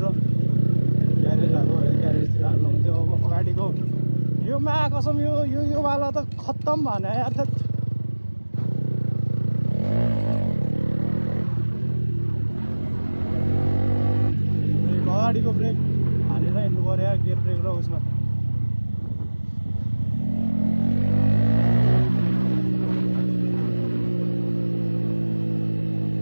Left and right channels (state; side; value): inverted; both; correlation -1.00